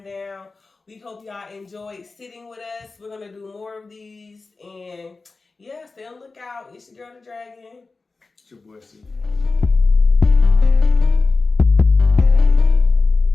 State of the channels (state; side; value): quieter; right; 3.9 dB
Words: We hope y'all enjoyed sitting with us. We're gonna do more of these, and yeah, stay on the lookout. It's your girl, the Dragon. It's your boy, Steve.